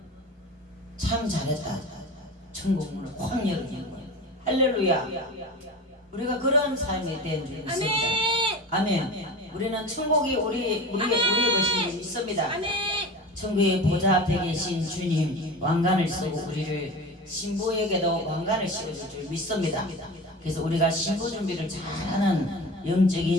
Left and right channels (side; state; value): both; normal; correlation 0.33